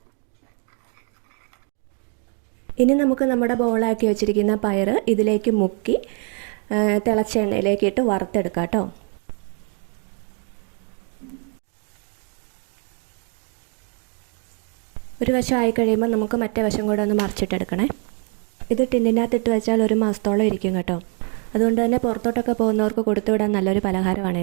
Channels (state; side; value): quieter; left; 39.6 dB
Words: ഇനി നമുക്ക് നമ്മുടെ ബോളാക്കി വെച്ചിരിക്കുന്ന പയർ ഇതിലേക്ക് മുക്കി തിളച്ച എണ്ണയിലേക്ക് ഇട്ട് വറുത്തെടുക്കാം കേട്ടോ. ഒരു വശം ആയി കഴിയുമ്പോൾ നമുക്ക് മറ്റേ വശം കൂടെ ഒന്ന് മറിച്ചിട്ടെടുക്കണേ. ഇത് ടിന്നിനകത്തിട്ട് വെച്ചാൽ 1 മാസത്തോളം ഇരിക്കും കേട്ടോ. അതുകൊണ്ട് തന്നെ പുറത്തോട്ടൊക്കെ പോകുന്നവർക്ക് കൊടുത്തു വിടാൻ നല്ലൊരു